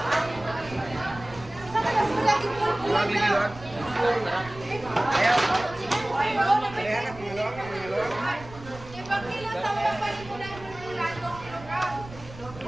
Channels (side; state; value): right; noise; rumble, 17 dB below the sound